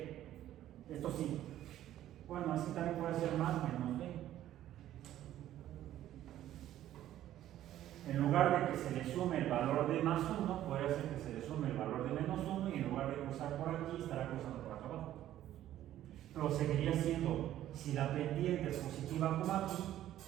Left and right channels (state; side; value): quieter; left; 12.7 dB